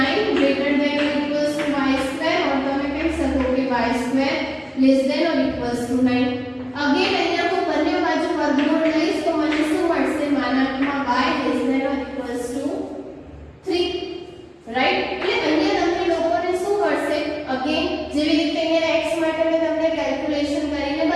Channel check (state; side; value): identical; both; correlation 1.00